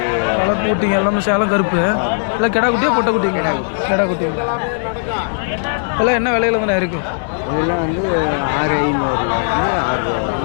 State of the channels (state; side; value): silent; right; digital silence